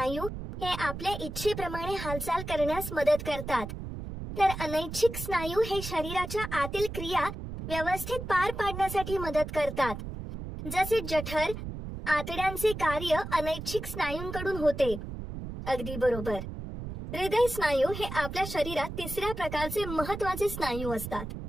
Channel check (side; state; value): right; noise; rumble, 8 dB below the sound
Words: हे आपल्या इच्छेप्रमाणे हालचाल करण्यास मदत करतात. तर अनैच्छिक स्नायू हे शरीराच्या आतील क्रिया व्यवस्थित पार पाडण्यासाठी मदत करतात. जसे जठर, आतड्यांचे कार्य अनैच्छिक स्नायूंकडून होते. अगदी बरोबर. हृदय स्नायू हे आपल्या शरीरात तिसऱ्या प्रकारचे महत्वाचे स्नायू असतात.